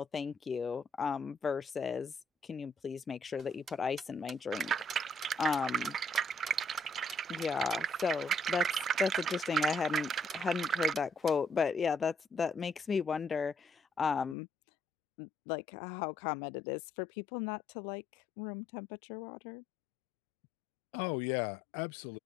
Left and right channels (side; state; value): right; drops out; at 14.4 s